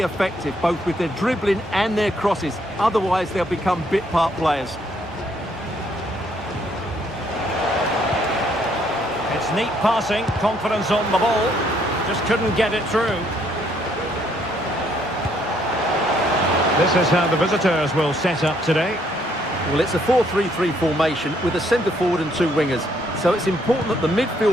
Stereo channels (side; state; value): both; normal; correlation 0.69